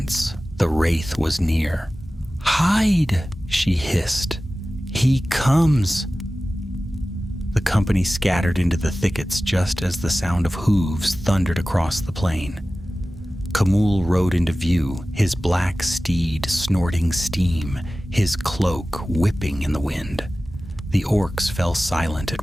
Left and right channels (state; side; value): normal; both; correlation 0.96